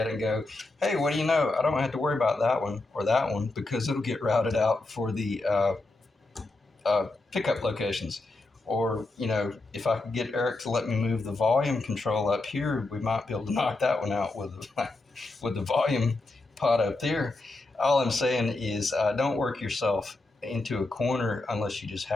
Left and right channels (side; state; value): right; quieter; 3.0 dB